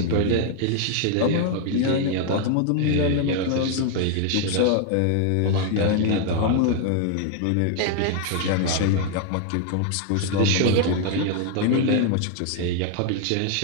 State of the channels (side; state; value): both; different; correlation 0.00